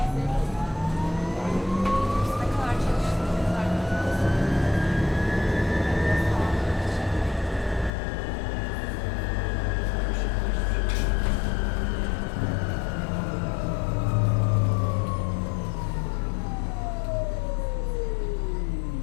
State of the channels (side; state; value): right; drops out; at 7.9 s